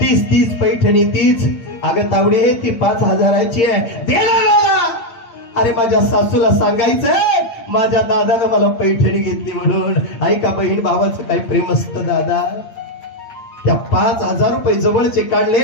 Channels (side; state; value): right; late; 8.7 ms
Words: पैठणी तीच। अगं तावडे ती 5000ची आहे, देणार। अरे माझ्या सासूला सांगायचं माझ्या दादानं मला पैठणी घेतली म्हणून। ऐका बहीण भावाचं काय प्रेम असतं दादा। त्या 5,000 रुपये जवळचे काढले